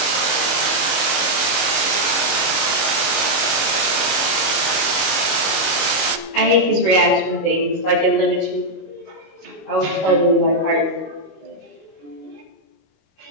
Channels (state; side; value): late; right; 25 ms